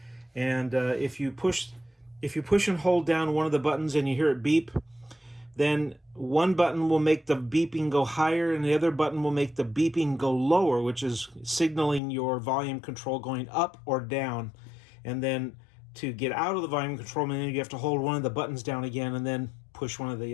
And if you push and hold down one of the buttons and you hear it beep, then one button will make the beeping go higher and the other button will make the beeping go lower, which is signaling your volume control going up or down. And then to get out of the volume control menu, you have to hold one of the buttons down again and then push one of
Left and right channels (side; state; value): right; drops out; at 12.0 s